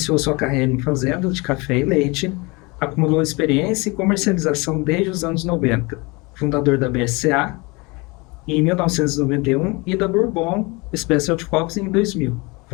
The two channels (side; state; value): right; quieter; 26.4 dB